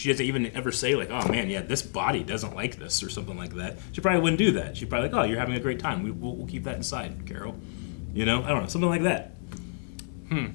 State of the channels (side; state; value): right; silent; digital silence